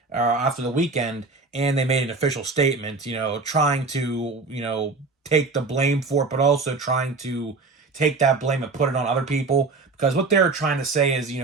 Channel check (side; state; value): left; quieter; 3.9 dB